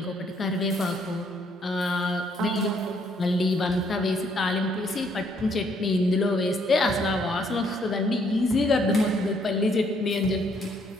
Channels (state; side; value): normal; both; correlation 0.68